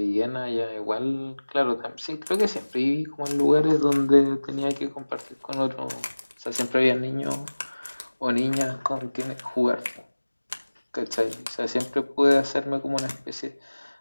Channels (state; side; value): inverted; both; correlation -1.00